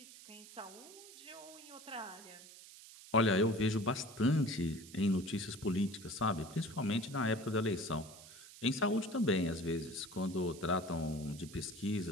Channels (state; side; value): noise; right; hiss, 17 dB below the sound